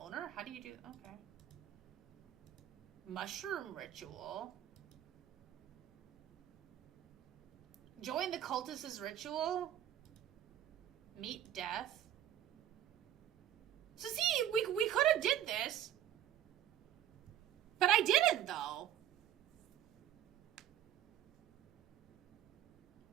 How do you do... Okay. Mushroom ritual. Join the cultist's ritual. Meet death. So see, we could have did this. But I didn't, though.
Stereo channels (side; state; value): left; quieter; 11.4 dB